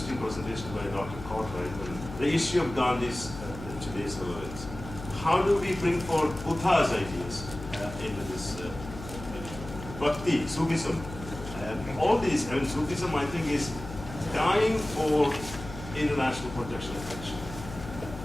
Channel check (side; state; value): left; noise; hum, 11 dB below the sound